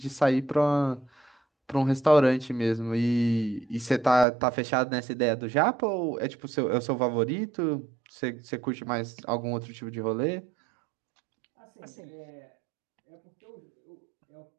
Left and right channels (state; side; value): drops out; left; at 4.2 s